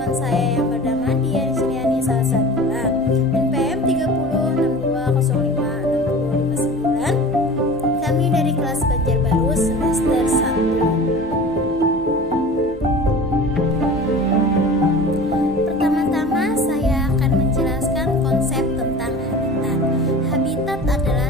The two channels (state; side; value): normal; both; correlation 0.38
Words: saya yang bernama Dian Suryani Salsabila, NPM 3062056059. Kami dari kelas Banjarbaru semester 1. Pertama-tama saya akan menjelaskan konsep tentang habitat. Habitat